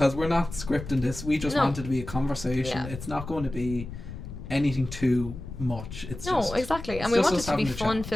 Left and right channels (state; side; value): noise; left; rumble, 10 dB below the sound